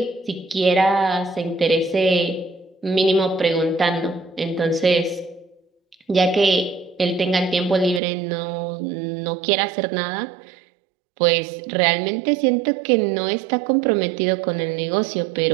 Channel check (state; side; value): drops out; left; at 8.0 s